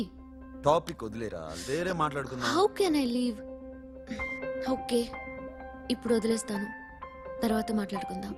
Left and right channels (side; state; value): both; identical; correlation 1.00